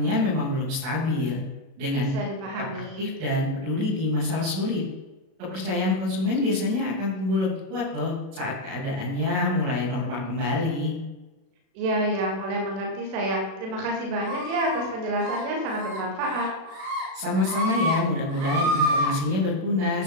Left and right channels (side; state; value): left; late; 37 ms